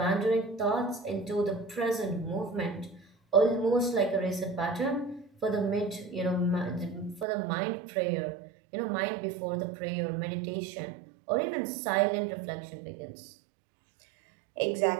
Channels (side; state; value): left; drops out; at 7.2 s